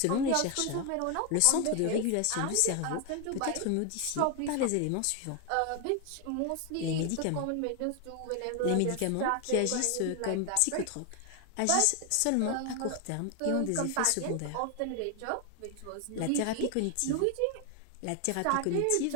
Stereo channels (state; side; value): different; both; correlation 0.01